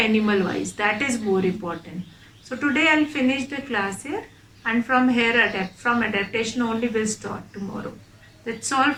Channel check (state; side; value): identical; both; correlation 1.00